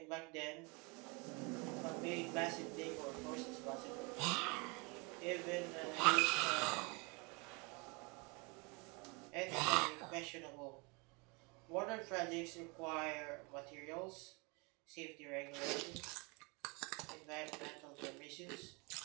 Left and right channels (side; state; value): left; quieter; 29.6 dB